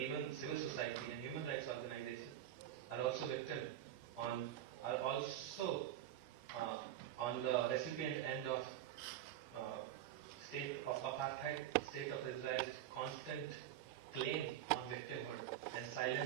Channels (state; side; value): quieter; left; 12.1 dB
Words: civil society and human rights organizations are also on the recipient end of state of apartheid, state of Israel's constant claim on victimhood and